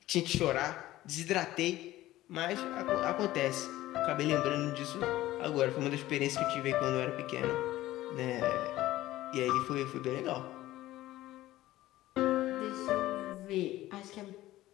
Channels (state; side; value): quieter; right; 15.8 dB